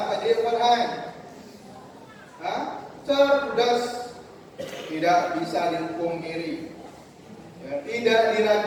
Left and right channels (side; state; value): both; identical; correlation 1.00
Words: Pak Dirwan. Cerdas, tidak bisa dipungkiri, ya, tidak